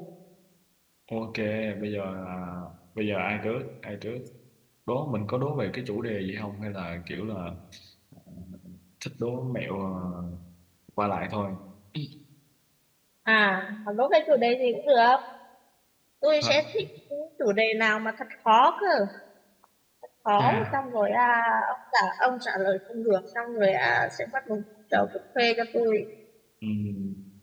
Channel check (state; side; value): identical; both; correlation 1.00